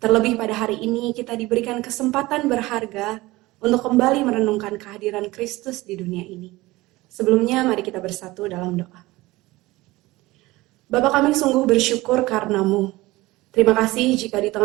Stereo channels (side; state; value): left; quieter; 19.7 dB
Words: Terlebih pada hari ini kita diberikan kesempatan berharga untuk kembali merenungkan kehadiran Kristus di dunia ini. Sebelumnya mari kita bersatu dalam doa. Bapa, kami sungguh bersyukur karena-Mu. Terima kasih jika di